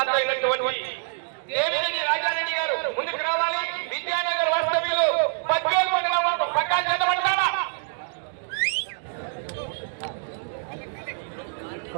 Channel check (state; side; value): silent; left; digital silence